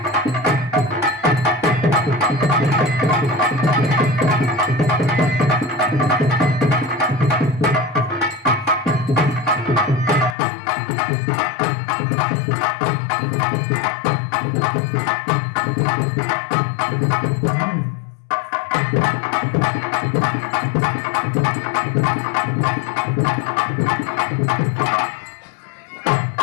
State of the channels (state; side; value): drops out; right; at 10.4 s